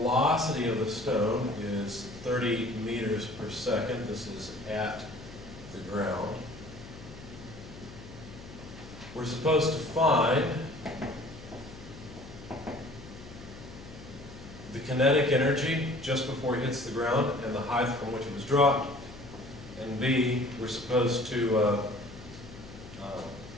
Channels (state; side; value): noise; left; hum, 16 dB below the sound